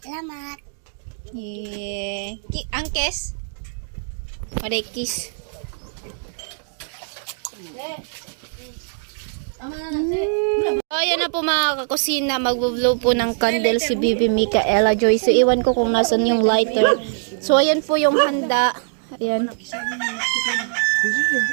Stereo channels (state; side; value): silent; left; digital silence